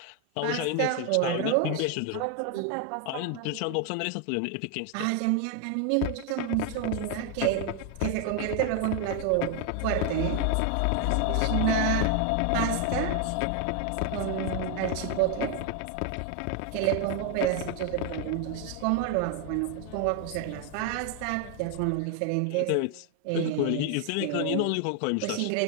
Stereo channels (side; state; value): both; different; correlation 0.01